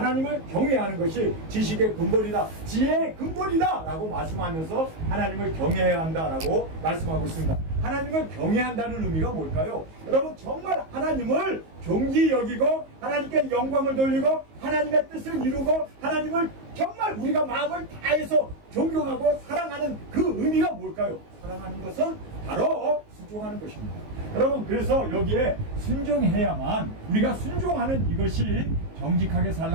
경외하는 것이 지식의 근본이다, 지혜의 근본이다 라고 말씀하면서 하나님을 경외해야 한다라고 말씀하고 있습니다. 하나님을 경외한다는 의미가 뭘까요? 여러분, 정말 하나님을 존귀 여기고 하나님께 영광을 돌리고 하나님의 뜻을 이루고 하나님을 정말 우리가 마음을 다해서 존경하고 사랑하는 그 의미가 뭘까요? 사랑하는 것은 바로 순종하는 것입니다. 여러분, 그래서 여기에 순종해야만, 우리가 순종하는 이것이 정직하게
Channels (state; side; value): late; left; 19 ms